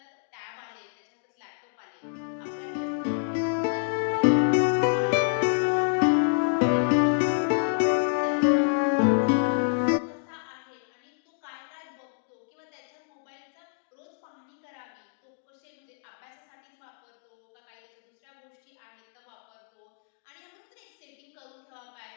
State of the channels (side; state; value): right; silent; digital silence